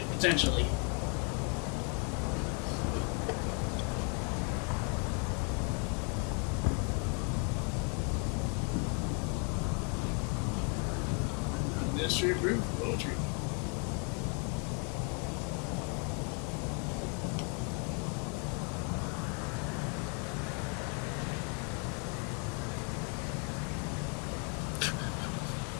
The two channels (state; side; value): quieter; right; 37.4 dB